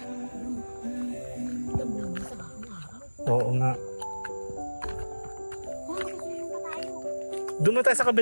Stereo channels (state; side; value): inverted; both; correlation -1.00